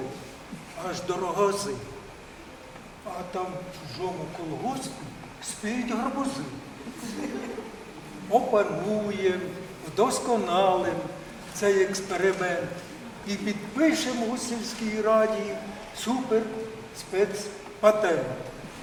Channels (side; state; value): both; identical; correlation 1.00